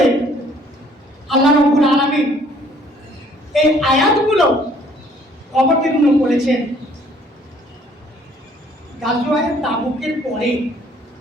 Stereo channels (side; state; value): both; normal; correlation 0.60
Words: আল্লাহ রাব্বুল আলামিন এই আয়াতগুলো অবতীর্ণ করেছেন গাজওয়ায়ে তাবুকের পরে।